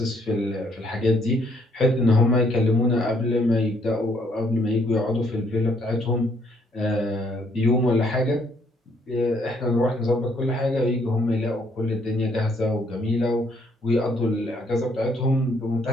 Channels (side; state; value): both; normal; correlation 0.68